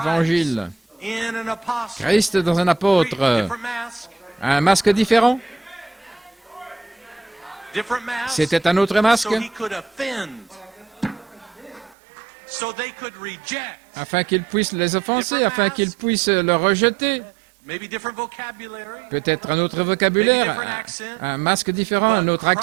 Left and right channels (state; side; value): drops out; left; at 12.0 s